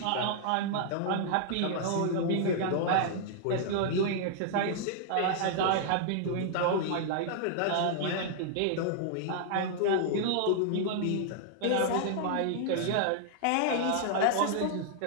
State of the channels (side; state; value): both; different; correlation -0.01